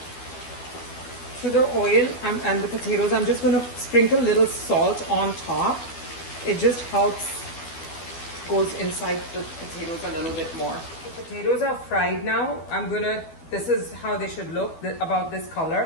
To the oil and the potatoes, I'm just going to sprinkle a little salt on top. It just helps, goes inside the potatoes a little bit more. The potatoes are fried now. This is how they should look, about this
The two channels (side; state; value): right; late; 12 ms